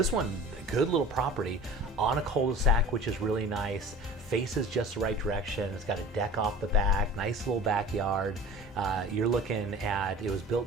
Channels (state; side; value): normal; both; correlation 0.41